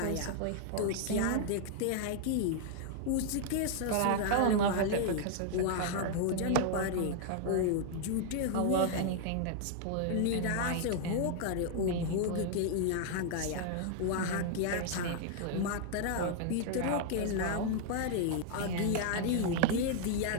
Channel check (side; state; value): both; different; correlation -0.01